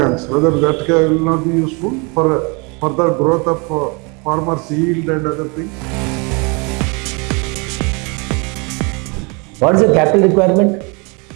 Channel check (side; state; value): left; quieter; 30.8 dB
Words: whether that will not be useful for further growth of farmers' yield and other things? What is the capital requirement